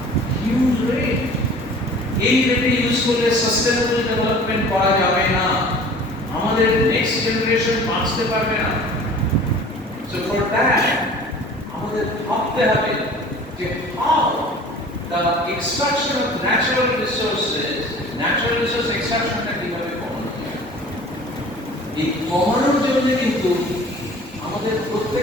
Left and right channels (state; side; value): normal; both; correlation 0.45